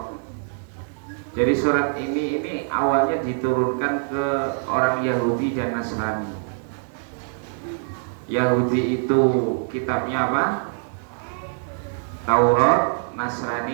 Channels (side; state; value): left; silent; 63 dB below the other